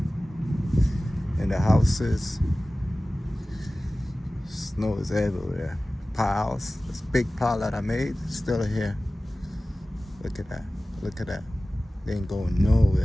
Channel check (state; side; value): normal; both; correlation 0.97